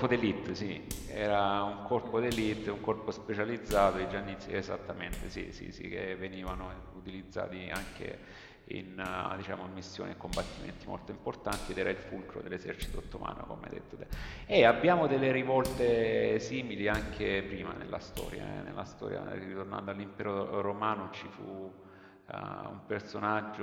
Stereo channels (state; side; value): identical; both; correlation 1.00